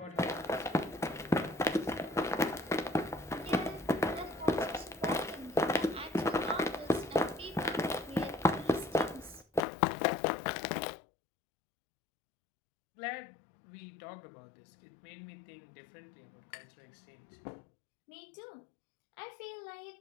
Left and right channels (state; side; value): drops out; right; at 9.6 s